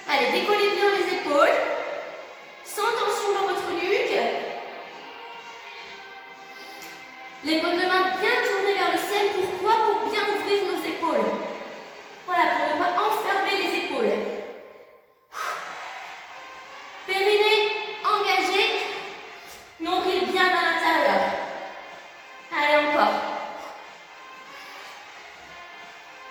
Allez, décollez bien les épaules. Sans tension dans votre nuque. Les paumes de main bien tournées vers le ciel. Pourquoi? Pour bien ouvrir nos épaules. Voilà, pour ne pas enfermer les épaules. Périnée engagé. Nombril bien à l'intérieur. Allez, encore.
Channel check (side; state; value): both; identical; correlation 1.00